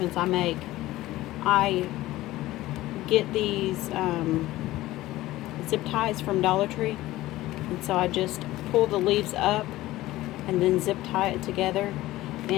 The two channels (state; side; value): quieter; right; 16.8 dB